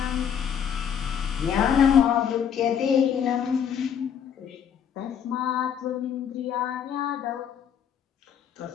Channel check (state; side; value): quieter; right; 8.2 dB